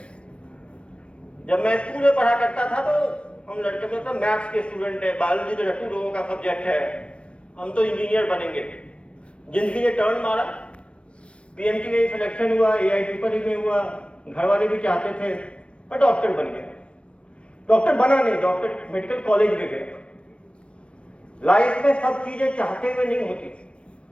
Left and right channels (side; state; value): right; late; 0.060 ms